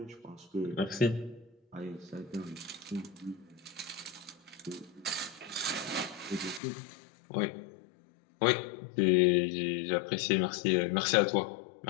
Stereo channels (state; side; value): drops out; right; at 6.6 s